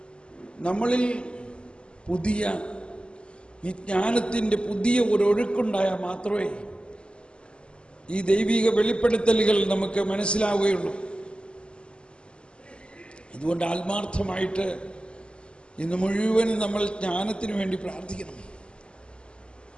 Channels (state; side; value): late; right; 0.052 ms